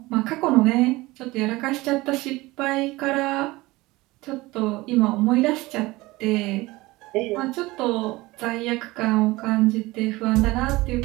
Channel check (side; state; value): left; quieter; 20.5 dB